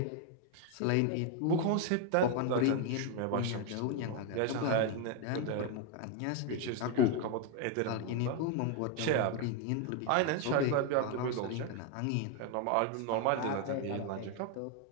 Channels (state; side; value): different; both; correlation 0.01